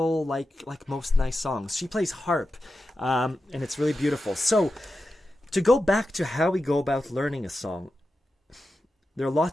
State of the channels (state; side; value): normal; both; correlation 0.91